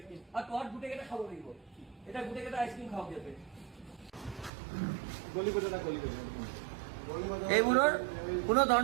আৰু তহঁত গোটেইকেইটা খাব লাগিব এতিয়া গোটেইকেইটা আইসক্ৰিম খাওক ইয়াতে এইবোৰৰ কোনো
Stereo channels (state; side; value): drops out; left; at 4.5 s